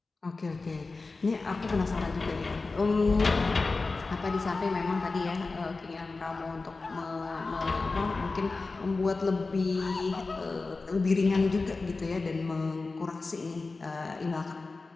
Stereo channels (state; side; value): quieter; right; 3.8 dB